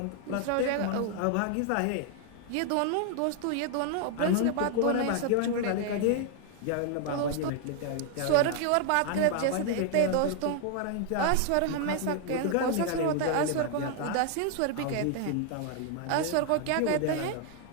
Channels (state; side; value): different; both; correlation 0.00